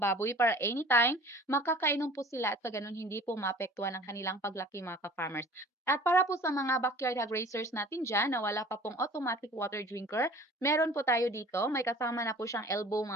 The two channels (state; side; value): normal; both; correlation 0.45